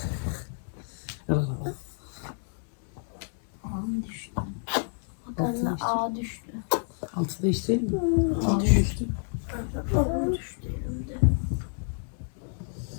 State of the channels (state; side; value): silent; right; 58 dB below the other